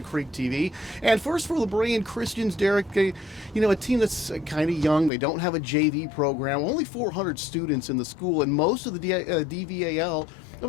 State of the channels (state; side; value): drops out; right; at 5.1 s